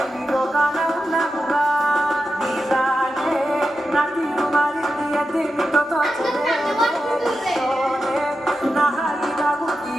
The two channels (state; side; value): normal; both; correlation 0.89